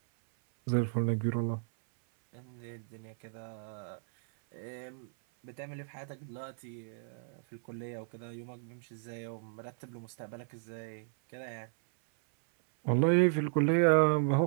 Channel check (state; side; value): silent; left; 55 dB below the other